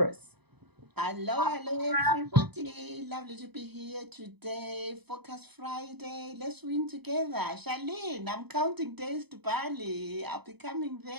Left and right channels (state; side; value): late; left; 0.98 ms